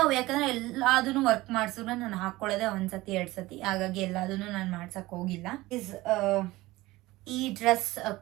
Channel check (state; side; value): quieter; left; 19.1 dB